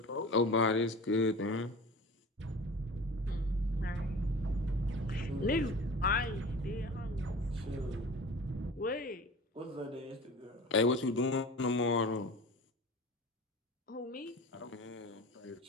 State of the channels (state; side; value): normal; both; correlation 0.37